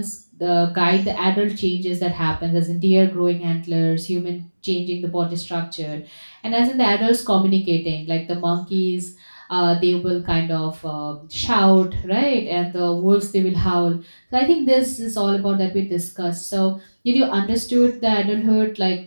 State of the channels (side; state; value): both; inverted; correlation -1.00